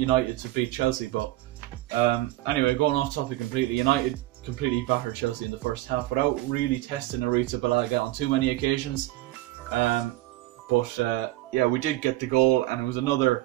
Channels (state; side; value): quieter; left; 16.9 dB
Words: to beat Chelsea. But anyway, going off topic completely, United completely battered Chelsea in the first half without really testing Arrizabalaga on too many occasions. But yeah, we did get the goal, and it was another